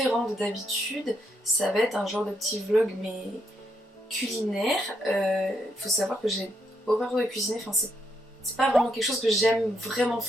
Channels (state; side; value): normal; both; correlation 0.77